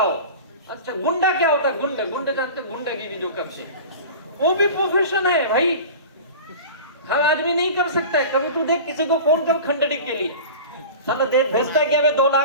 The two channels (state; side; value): inverted; both; correlation -0.35